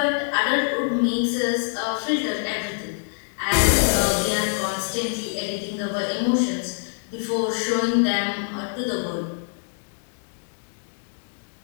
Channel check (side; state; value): right; silent; digital silence